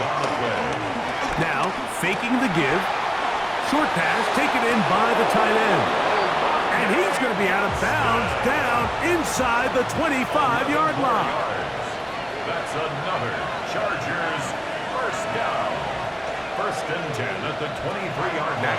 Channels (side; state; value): both; identical; correlation 1.00